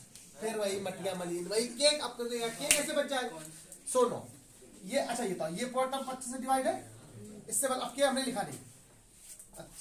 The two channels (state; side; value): identical; both; correlation 1.00